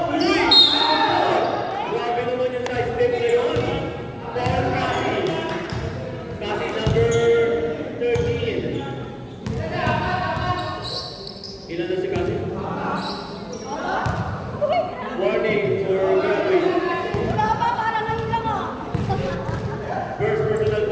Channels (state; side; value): identical; both; correlation 1.00